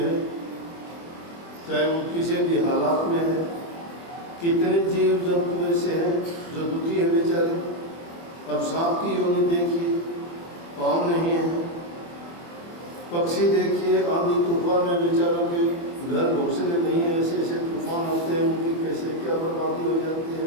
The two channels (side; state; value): right; late; 23 ms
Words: चाहे वो किसी भी हालात में है। कितने जीव जंतु ऐसे हैं जो दुखी है बेचारे। अब सांप की योनि देखिए, पाँव नहीं है। पक्षी देखिए, आंधी तूफान में बेचारों के घर घोंसले नहीं है, ऐसे ऐसे तूफान आते हैं, उनकी कैसे क्या बर्बादी हो जाती है।